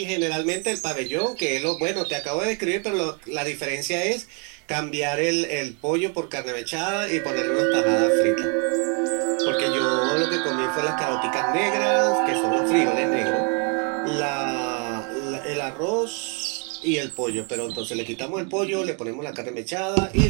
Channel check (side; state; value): left; quieter; 36.9 dB